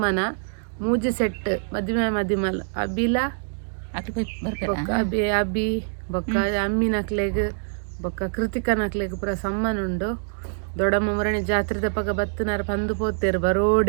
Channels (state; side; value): silent; left; digital silence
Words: ಮೂಜಿ ಸೆಟ್ ಮದಿಮೆ ಮದಿಮಲ್ ಅಬಿಲ ಅಬಿ ಬೊಕ್ಕ ಅಮ್ಮಿನಕ್ಲೆಗ್ ಬೊಕ್ಕ ಕೃತಿಕನಕ್ಲೆಗ್ ಪೂರ ಸಮ್ಮನ ಉಂಡು. ದೊಡ್ಡಮ್ಮ ಮುರಣಿ ಜಾತ್ರೆ ಪಕ್ಕ ಬತ್ತನಾರ ಪಂದು ಪೋತೇರು